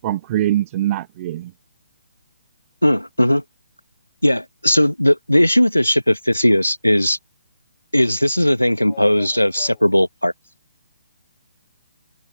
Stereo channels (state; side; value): inverted; both; correlation -0.94